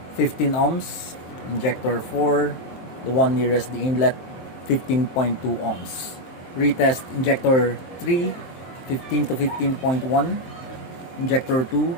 15 ohms, injector 4, the one nearest the inlet, 15.2 ohms. Retest injector 3, 15 to 15.1, injector 2,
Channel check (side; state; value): right; late; 23 ms